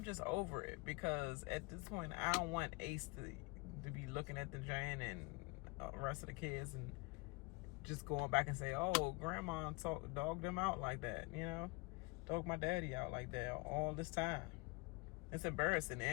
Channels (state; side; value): quieter; right; 27.1 dB